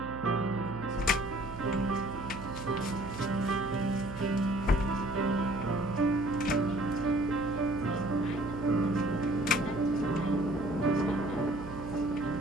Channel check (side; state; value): right; noise; hum, 12 dB below the sound